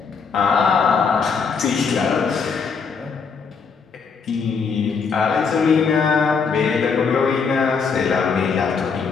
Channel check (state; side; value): quieter; right; 5.5 dB